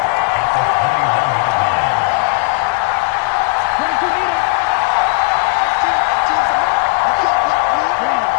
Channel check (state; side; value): quieter; right; 27.8 dB